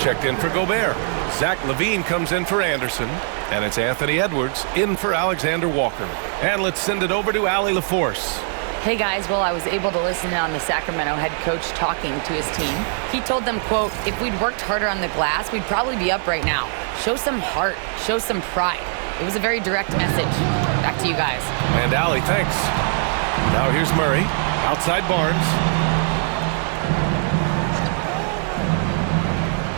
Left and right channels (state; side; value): silent; left; 56 dB below the other